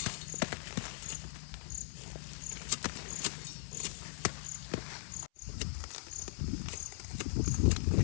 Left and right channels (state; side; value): silent; right; 51 dB below the other